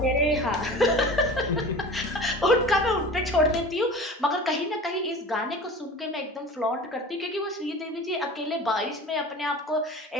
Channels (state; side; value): normal; both; correlation 0.37